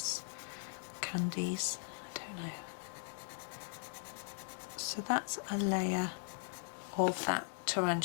candies. No. So that's a layer of that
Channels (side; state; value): right; silent; digital silence